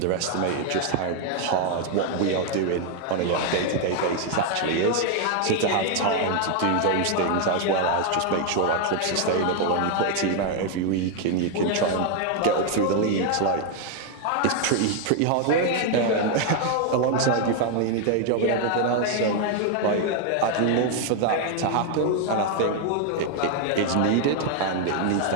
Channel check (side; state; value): both; different; correlation 0.00